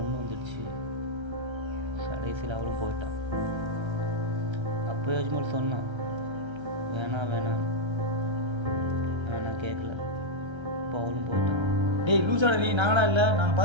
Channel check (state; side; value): late; left; 1.3 ms